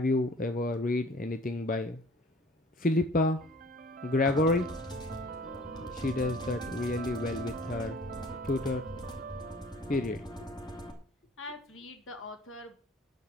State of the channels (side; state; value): both; normal; correlation 0.50